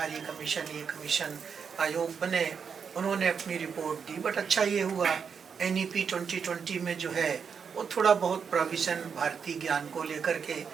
कमीशन, ये कमीशन आयोग बने, उन्होंने अपनी रिपोर्ट दी। बट अच्छा ये हुआ NEP 2020 में जो है वो थोड़ा बहुत प्रोविज़न भारतीय ज्ञान को लेकर के,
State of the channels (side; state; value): left; quieter; 6.5 dB